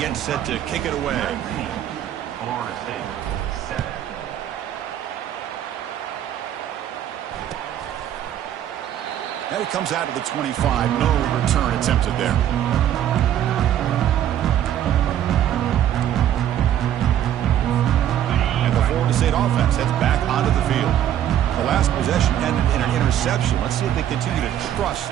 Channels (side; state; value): left; quieter; 10.9 dB